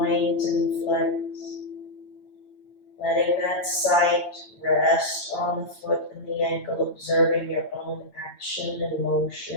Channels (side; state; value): right; late; 9.1 ms